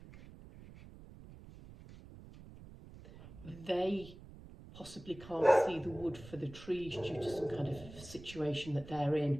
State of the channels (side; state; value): right; noise; rumble, 17 dB below the sound